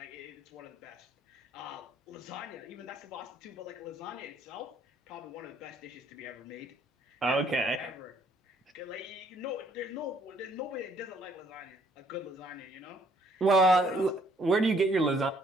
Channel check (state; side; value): normal; both; correlation 0.64